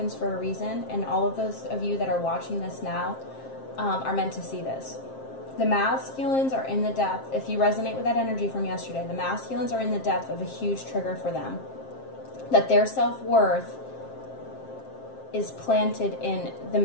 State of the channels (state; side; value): late; right; 7.6 ms